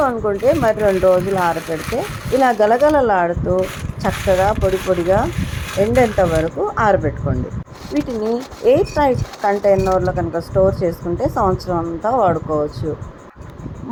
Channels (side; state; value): both; identical; correlation 1.00